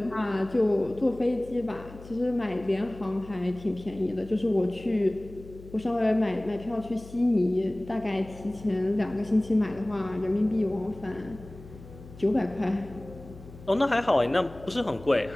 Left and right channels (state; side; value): noise; left; hum, 18 dB below the sound